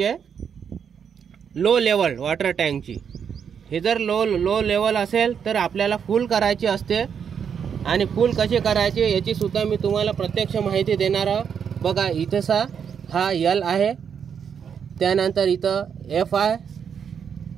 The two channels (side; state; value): left; quieter; 7.4 dB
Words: लो लेवल वॉटर टँकची। हे जर लो लेवल असेल तर आपल्याला फुल करायची असते आणि फुल कशी करायची याची सुद्धा मी तुम्हाला प्रत्यक्ष माहिती देणार आहे। बघा इथंसा हा यल आहे, त्यानंतर इथं एफ आहे,